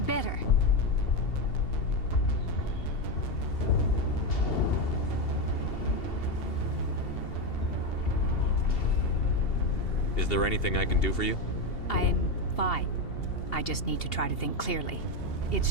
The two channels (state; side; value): late; right; 2.7 ms